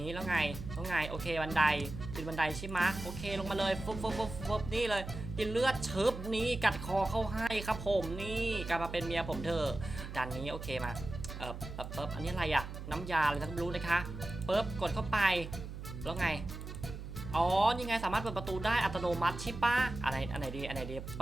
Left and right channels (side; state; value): right; noise; hum, 9 dB below the sound